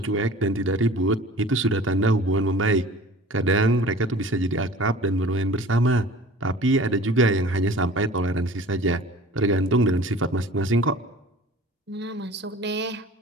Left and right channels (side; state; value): both; normal; correlation 0.43